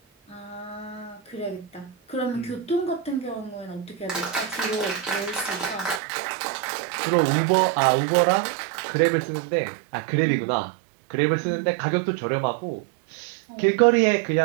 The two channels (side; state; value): left; drops out; at 6.0 s